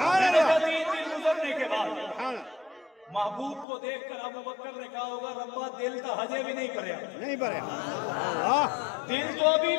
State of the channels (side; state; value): right; drops out; at 3.7 s